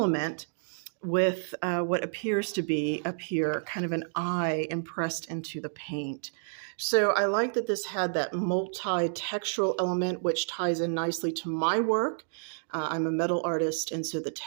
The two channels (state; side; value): silent; left; digital silence